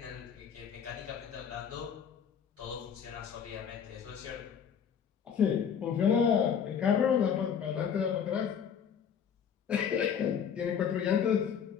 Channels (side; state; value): right; quieter; 7.7 dB